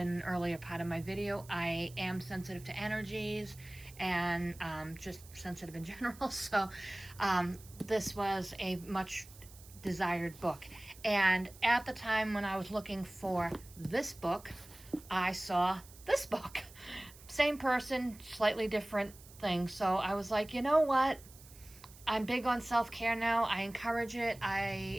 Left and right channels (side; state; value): right; noise; hiss, 21 dB below the sound